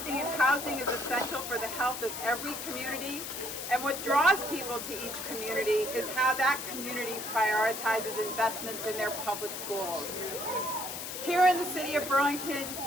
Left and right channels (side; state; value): left; noise; hiss, 7 dB below the sound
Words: in housing is essential for the health of every community, and what draws people to each community is how that community prioritizes investments in their public schools. Here in the city of Burlington,